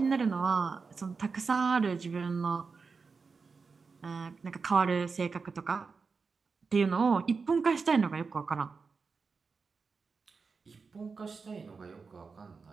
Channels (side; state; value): left; quieter; 4.8 dB